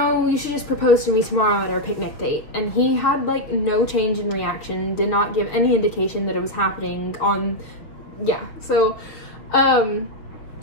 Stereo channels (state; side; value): late; right; 6.3 ms